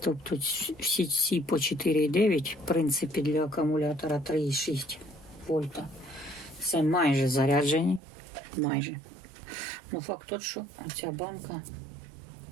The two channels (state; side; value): drops out; left; at 8.0 s